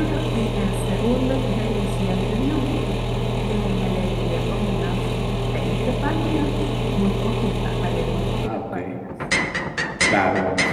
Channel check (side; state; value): both; identical; correlation 1.00